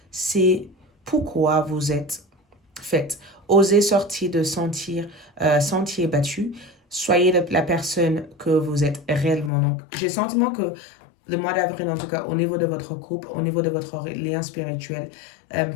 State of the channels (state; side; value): drops out; right; at 9.5 s